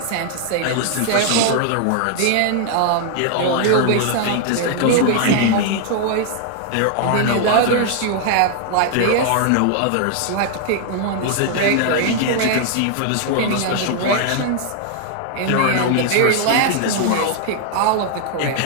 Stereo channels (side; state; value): both; different; correlation 0.00